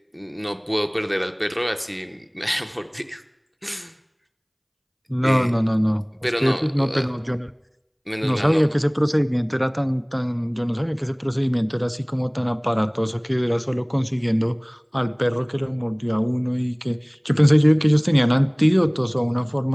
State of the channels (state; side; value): identical; both; correlation 1.00